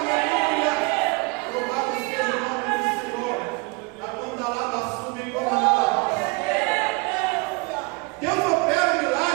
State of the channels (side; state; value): left; quieter; 27.7 dB